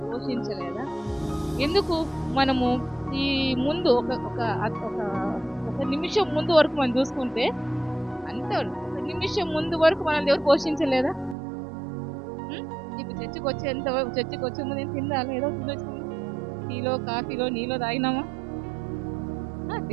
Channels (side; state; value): left; drops out; at 11.4 s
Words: పోషించలేదా? ఎందుకు? మనము ఈ ముందు ఒక నిమిషం ముందు వరకు మనం చూసుకుంటే అంతే, ఒక నిమిషం ముందు వరకు మన దేవుడు పోషించలేదా? ఇప్పుడు చర్చికి వచ్చే ముందు నేను తిందాలి, ఏదో తినొచ్చింది, టీలో కాఫీలో నీలో తాగినామా,